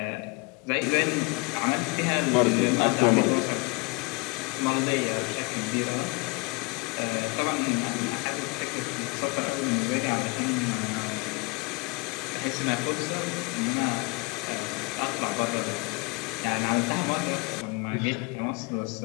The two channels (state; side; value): quieter; right; 29.0 dB